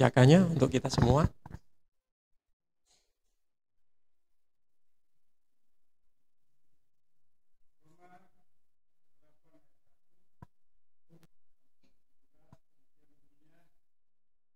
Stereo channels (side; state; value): both; identical; correlation 1.00